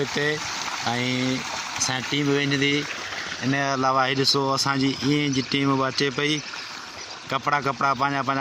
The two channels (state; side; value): identical; both; correlation 1.00